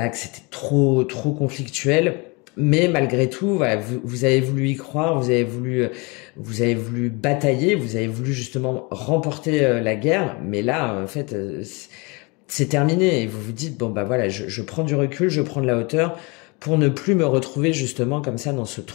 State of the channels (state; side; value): quieter; right; 28.5 dB